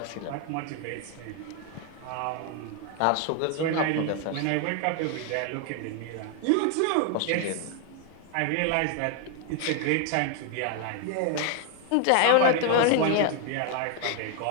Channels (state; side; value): different; both; correlation 0.00